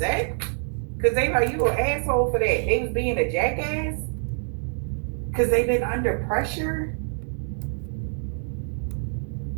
because they like you an asshole for that. They was being a jackass because they've been under pressure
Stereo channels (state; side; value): silent; left; digital silence